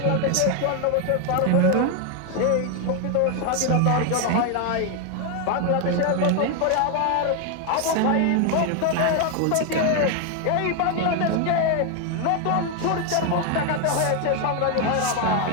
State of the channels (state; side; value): different; both; correlation 0.01